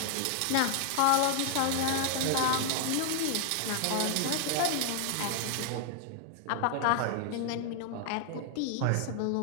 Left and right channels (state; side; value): different; both; correlation 0.00